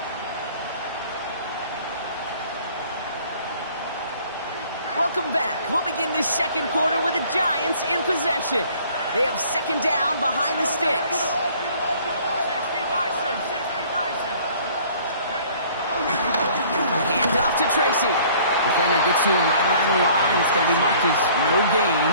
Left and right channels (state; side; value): inverted; both; correlation -0.54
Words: welcome back. We'll begin this second quarter with the Giants in possession. They have second down behind the sticks. 60 Bison, 60 Bison. Hand off to Tracy. Defender gets to him right around the line. It's going to be marked as no gain.